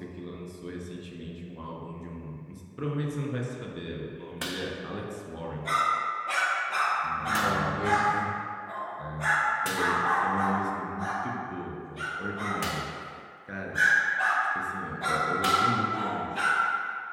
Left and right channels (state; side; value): identical; both; correlation 1.00